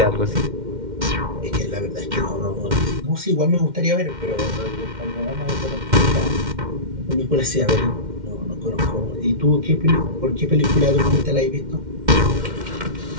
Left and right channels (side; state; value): left; late; 2.1 ms